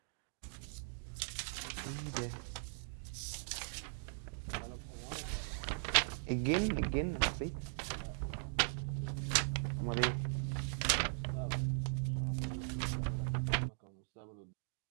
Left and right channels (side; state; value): left; silent; digital silence